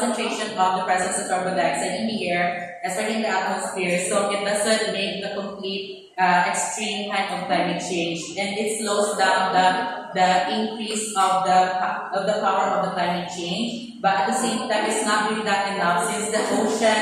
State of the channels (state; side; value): identical; both; correlation 1.00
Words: of the presence of carbon dioxide in the air, especially in the atmosphere, so it doesn't make the complete extreme kind of climate change, and it slows down the increase of the power of the climate change. But at the same time, it's not really that enough since the